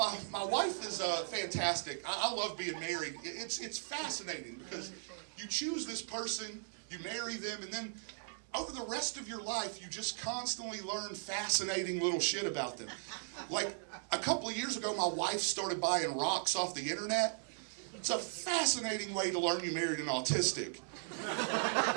wife is fantastic. I love being married. It's fascinating because you choose this person, you marry them, and then over the rest of your life, you just constantly learn fascinating little shit about them. Like a couple of years ago, my wife started buying rocks off the internet. It's a fascinating way to learn you married an autistic.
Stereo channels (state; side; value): silent; left; digital silence